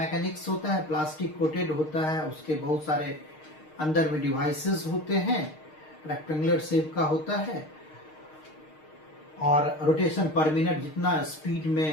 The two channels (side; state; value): right; late; 6.5 ms